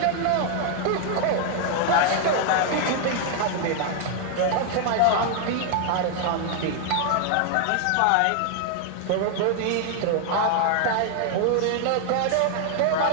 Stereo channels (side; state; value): both; different; correlation 0.00